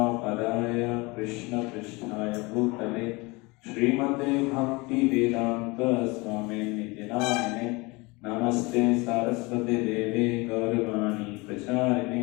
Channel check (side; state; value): right; quieter; 25.2 dB